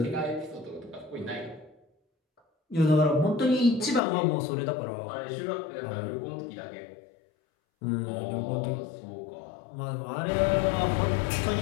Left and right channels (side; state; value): right; drops out; at 4.0 s